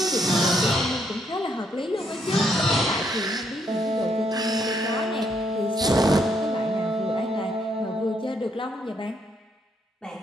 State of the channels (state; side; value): normal; both; correlation 0.73